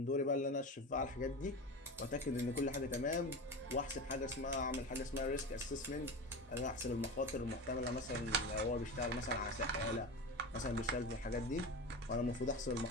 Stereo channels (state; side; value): normal; both; correlation 0.26